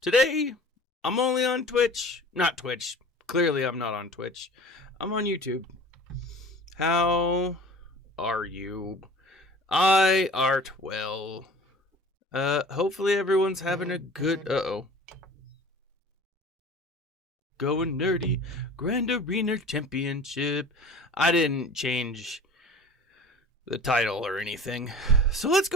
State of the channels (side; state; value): both; normal; correlation 0.41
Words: Today, I'm only on Twitch. Not Twitch. Clearly, I'm not on Twitch. I'm on YouTube. How are you? I art well. Hopefully everyone's having a good... Going nerdy. Grand Arena Championship. I didn't change the title or anything. So let's